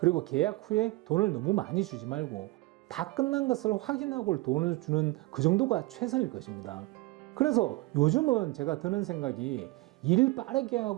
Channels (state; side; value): quieter; left; 21.2 dB